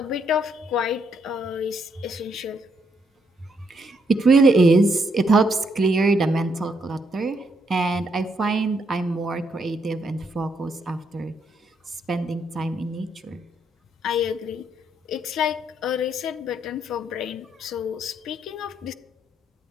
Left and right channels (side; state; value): both; normal; correlation 0.74